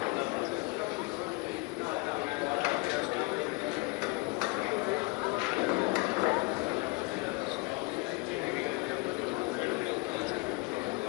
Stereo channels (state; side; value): quieter; right; 26.4 dB